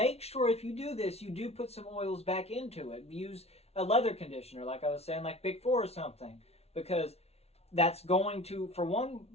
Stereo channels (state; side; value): late; right; 0.30 ms